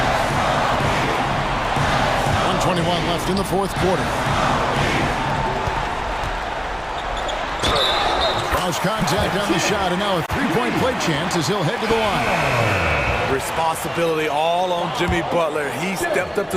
1:21 left in the fourth quarter. Cross contact on the shot, and now a 3-point play chance as he'll head to the line. Responsibility all on Jimmy Butler. He stepped up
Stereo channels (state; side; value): identical; both; correlation 1.00